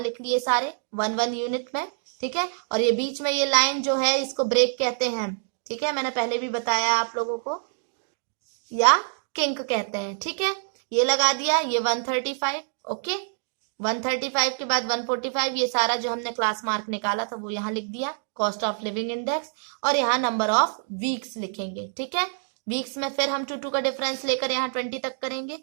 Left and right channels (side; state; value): left; silent; 61 dB below the other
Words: लिए सारे 1 यूनिट में। ठीक है, और ये बीच में ये लाइन जो है इसको ब्रेक कहते हैं। ठीक है, मैंने पहले भी बताया आप लोगों को, या किंक कहते हैं। ठीक है, ये लगा दिया, ये 135। ओके, 135 के बाद 145, ये सारा जो हमने क्लास मार्क निकाला था वो यहाँ लिख दिया, कॉस्ट ऑफ लिविंग इंडेक्स, और यहाँ नंबर ऑफ वीक्स लिखेंगे। ठीक है, वीक्स में फिर हम 2 का डिफरेंस लेकर यहाँ 20 तक करेंगे।